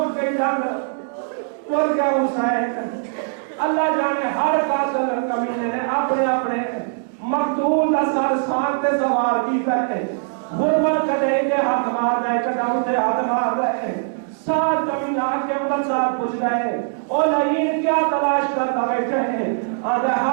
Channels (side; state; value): left; silent; digital silence